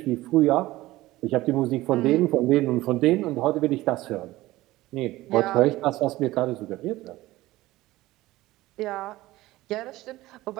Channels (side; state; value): left; quieter; 17.6 dB